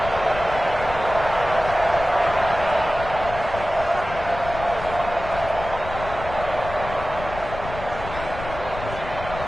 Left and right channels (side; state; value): left; noise; rumble, 10 dB below the sound